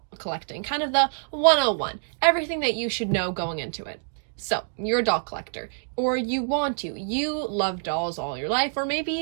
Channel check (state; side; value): silent; left; digital silence